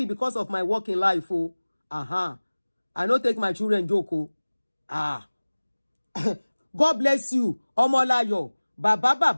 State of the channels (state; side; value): inverted; both; correlation -1.00